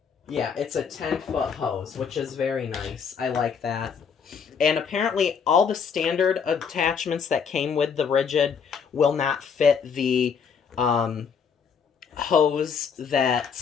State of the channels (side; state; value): right; quieter; 6.5 dB